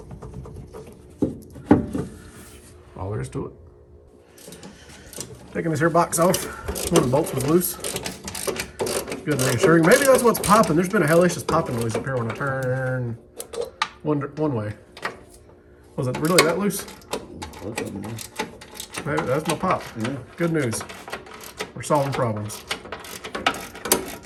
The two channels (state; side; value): identical; both; correlation 1.00